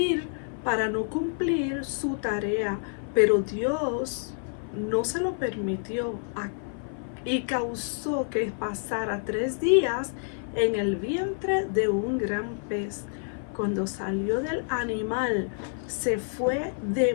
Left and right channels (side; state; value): right; silent; 55 dB below the other